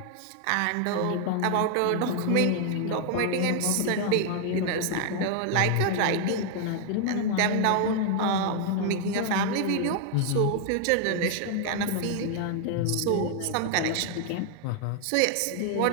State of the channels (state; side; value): different; both; correlation 0.00